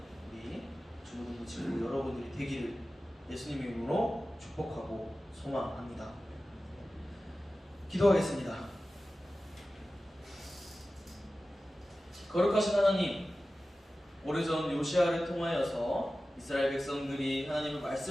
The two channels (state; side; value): normal; both; correlation 0.95